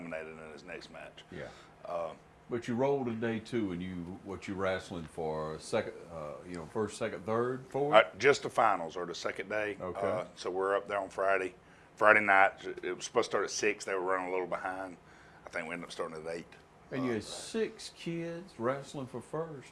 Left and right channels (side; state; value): both; identical; correlation 1.00